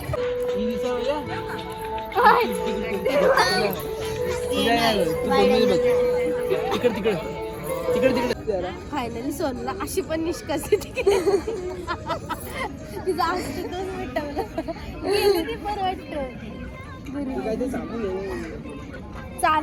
फायनली सोनला अशी पण निष्कासित तिचा अस्तित्वच मिटवलं गेली ती पण वाटतं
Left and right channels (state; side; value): identical; both; correlation 1.00